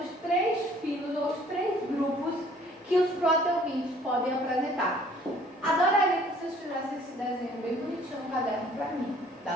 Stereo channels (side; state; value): both; normal; correlation 0.56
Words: 3 filos, ou os 3 grupos que os plateumintos podem apresentar. Adoraria que vocês fizessem esse desenho bem bonitinho no caderno para mim. Dá